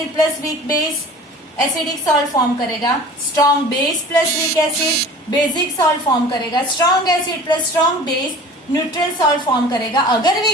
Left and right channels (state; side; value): normal; both; correlation 0.42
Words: plus weak base acidic salt form करेगा, strong base plus weak acid basic salt form करेगा, strong acid plus strong base neutral salt form करेगा। अगर